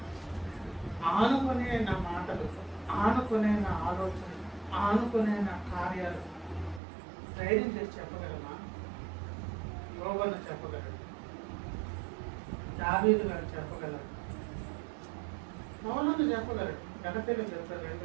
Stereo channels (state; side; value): drops out; left; at 6.8 s